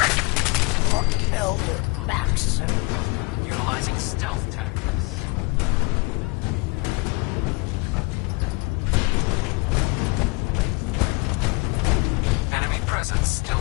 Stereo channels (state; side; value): quieter; right; 28.0 dB